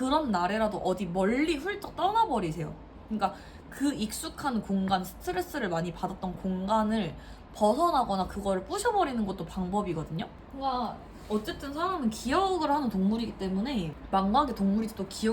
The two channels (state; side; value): identical; both; correlation 1.00